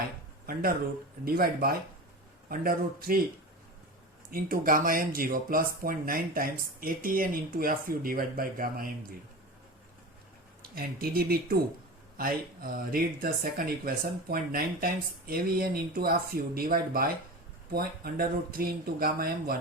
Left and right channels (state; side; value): normal; both; correlation 0.29